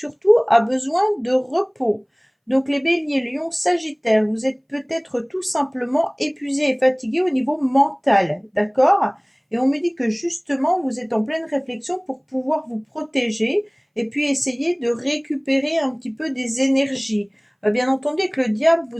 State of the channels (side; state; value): both; identical; correlation 1.00